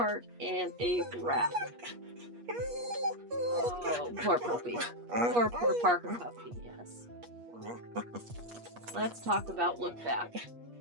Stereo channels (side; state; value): left; late; 8.4 ms